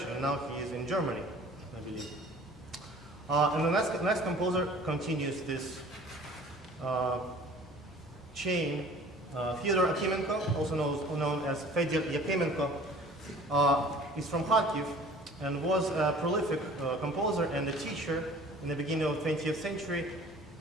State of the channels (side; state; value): both; normal; correlation 0.48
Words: and now he is in Germany, I believe. And the next composer continues this chain. Fyodor Akimenko, also known as Fedor Yakemenko, is from Kharkiv and was a prolific composer and a teacher in the beginning of the 20th century.